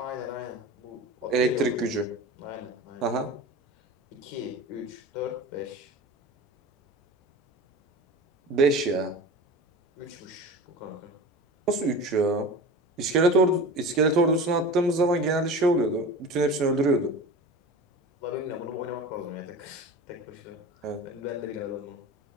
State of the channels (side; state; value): both; normal; correlation 0.33